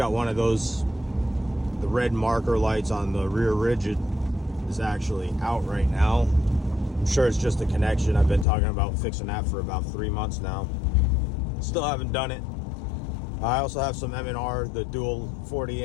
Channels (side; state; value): right; drops out; at 8.5 s